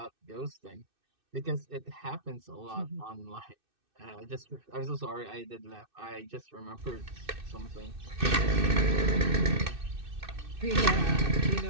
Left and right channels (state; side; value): late; left; 2.6 ms